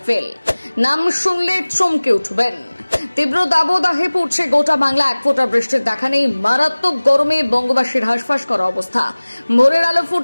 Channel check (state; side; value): inverted; both; correlation -1.00